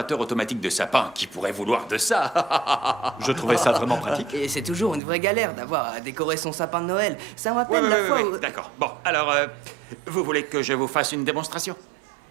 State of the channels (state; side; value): drops out; left; at 5.0 s